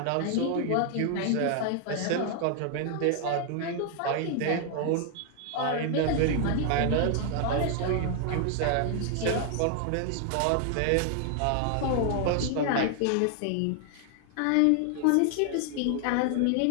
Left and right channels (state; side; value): different; both; correlation 0.00